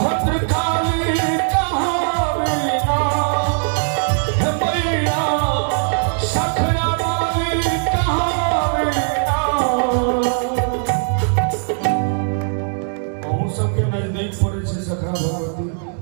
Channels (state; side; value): silent; left; digital silence